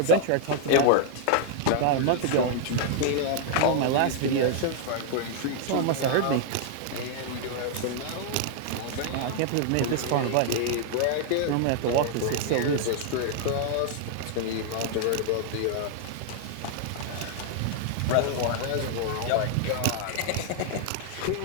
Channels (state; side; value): different; both; correlation 0.00